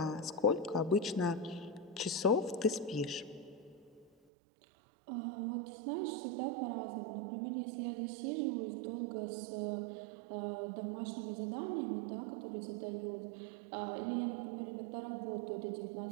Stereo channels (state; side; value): drops out; left; at 4.1 s